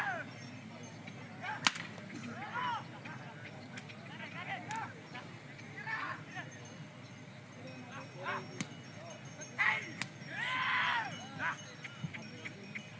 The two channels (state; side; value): identical; both; correlation 1.00